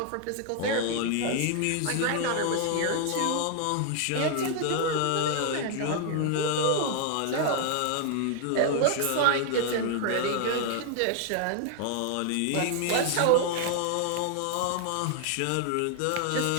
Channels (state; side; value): different; both; correlation 0.00